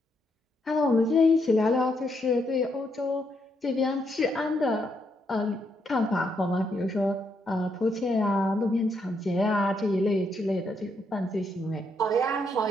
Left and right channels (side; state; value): both; normal; correlation 0.77